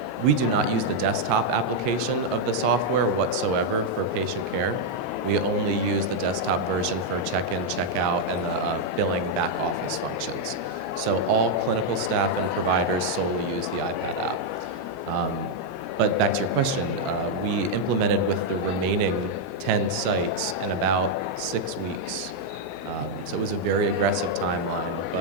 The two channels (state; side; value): normal; both; correlation -0.01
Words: we do not use the desktop application of the software whatsoever for patient care. We only use the desktop version for check-in, check-out, and the billing back office functions. So all clinical staff and providers solely use the iPad app. But back to your question, we implemented with the remaining 10 sites in about 6 weeks. So it was a very aggressive timeline,